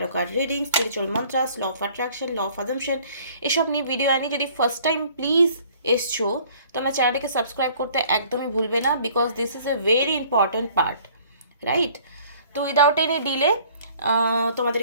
card reading, spiritual mantras, law of attraction, law of assumption এসব নিয়ে ভিডিও আনি। যদি ফার্স্ট টাইম প্লিজ এসছো, তোমরা চ্যানেলটাকে সাবস্ক্রাইব করতে একদমই ভুলবে না, because this is a very important part, right? তো উইদাউট এনি ডিলে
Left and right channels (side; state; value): both; inverted; correlation -0.55